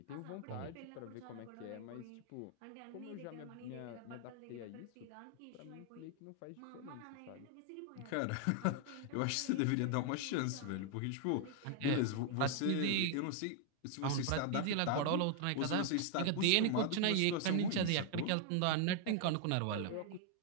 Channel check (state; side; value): different; both; correlation 0.00